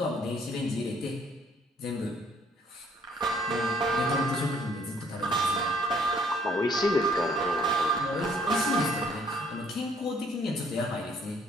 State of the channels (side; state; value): both; normal; correlation 0.63